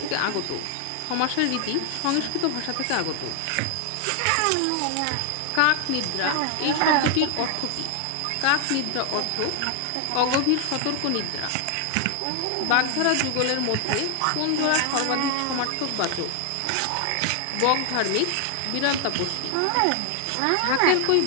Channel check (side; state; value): both; different; correlation 0.00